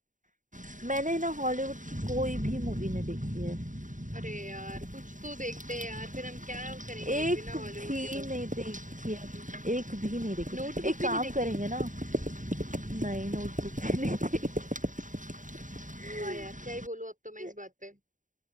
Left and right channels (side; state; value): left; late; 0.37 ms